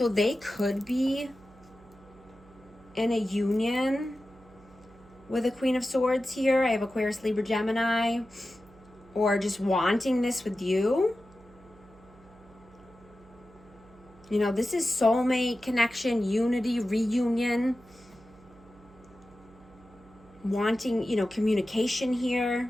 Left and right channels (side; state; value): right; noise; hum, 25 dB below the sound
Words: they could be in a union with a Queen of Swords here. I have Aquarius, Libra, Gemini. Or just wanting this with you. You know, this is soulmate connection, unity, reunion. Wanting, you know, communication here.